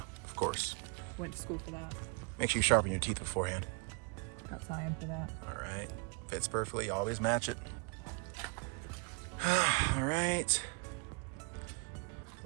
of course. Went to school for that. Make sure you sharpen your teeth beforehand. Got cyan for that. All right, fits perfectly. Always match it. All right.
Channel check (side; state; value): left; quieter; 32.6 dB